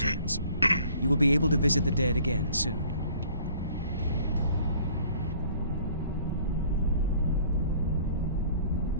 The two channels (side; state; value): both; inverted; correlation -0.54